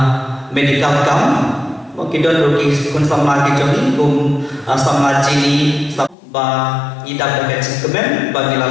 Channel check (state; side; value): drops out; right; at 6.2 s